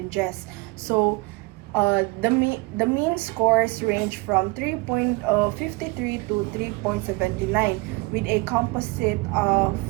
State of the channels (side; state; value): left; quieter; 24.2 dB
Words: So the mean scores range from 3.53 to 3.79 with a composite of